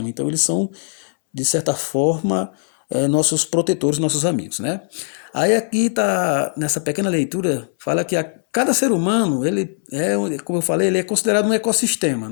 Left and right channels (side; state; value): right; silent; 66 dB below the other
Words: Então, eles são, de certa forma, nossos protetores, nossos amigos, né? Aí aqui tá nessa pequena leitura fala que cada ser humano ele como eu falei, ele é considerado um ecossistema,